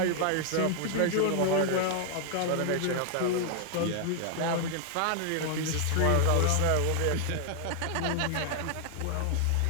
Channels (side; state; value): both; different; correlation 0.00